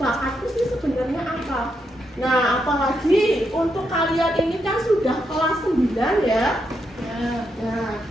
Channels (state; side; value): normal; both; correlation 0.81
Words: sih sebenarnya apa. Nah, apalagi untuk kalian ini kan sudah kelas 9 ya. Nah,